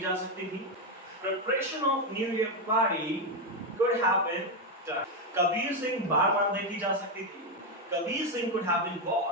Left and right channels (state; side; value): normal; both; correlation 0.06